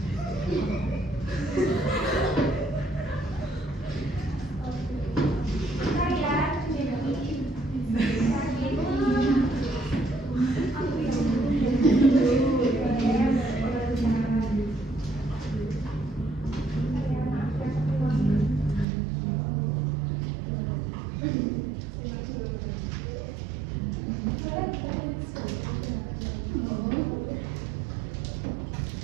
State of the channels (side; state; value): left; drops out; at 18.9 s